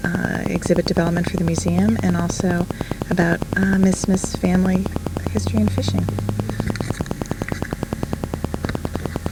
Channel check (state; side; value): identical; both; correlation 1.00